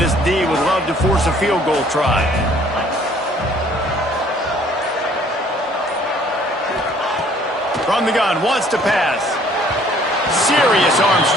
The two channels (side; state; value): both; normal; correlation 0.58